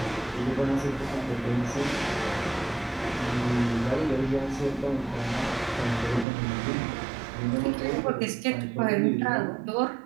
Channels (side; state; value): left; drops out; at 6.2 s